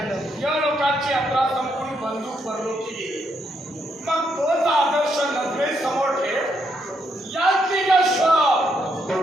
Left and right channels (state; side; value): normal; both; correlation 0.77